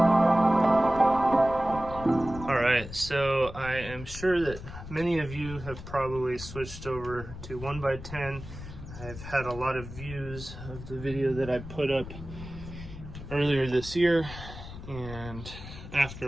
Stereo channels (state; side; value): noise; left; rumble, 12 dB below the sound